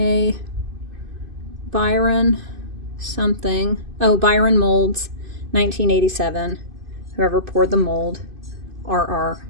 Byron something. Oh, Byron Molds, 1987. Whoever poured the mold, RR,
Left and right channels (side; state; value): left; late; 2.5 ms